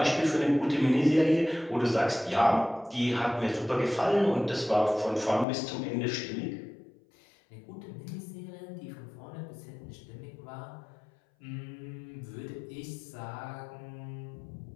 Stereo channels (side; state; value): right; drops out; at 5.5 s